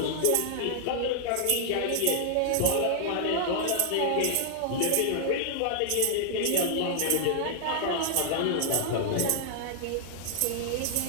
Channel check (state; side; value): different; both; correlation -0.01